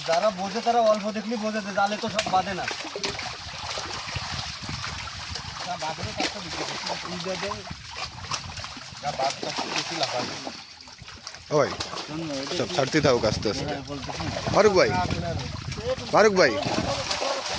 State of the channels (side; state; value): both; identical; correlation 1.00